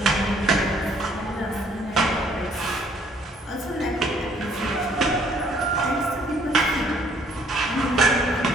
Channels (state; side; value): normal; both; correlation 0.62